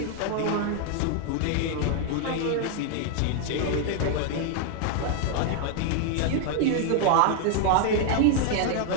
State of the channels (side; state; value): both; different; correlation 0.00